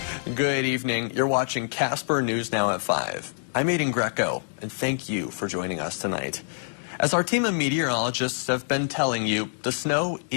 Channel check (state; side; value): silent; right; digital silence